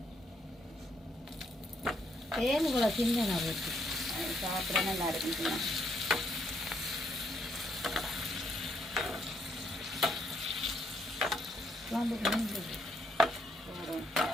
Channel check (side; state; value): both; normal; correlation 0.73